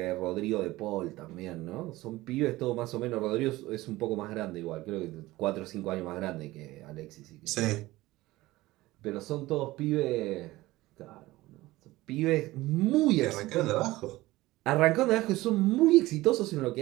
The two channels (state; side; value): quieter; left; 18.4 dB